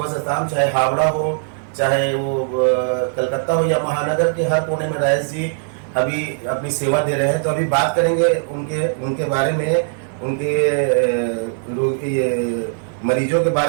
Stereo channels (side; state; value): left; silent; 58 dB below the other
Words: से शाम, चाहे हावड़ा हो, चाहे वो कलकत्ता हो या महानगर के हर कोने में राजेश जी अभी अपनी सेवा दे रहे हैं। तो अभी बात करेंगे उनके बारे में, उनके मरीजों के